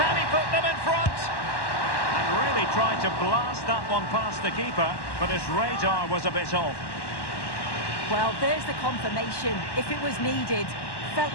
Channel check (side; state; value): right; late; 1.1 ms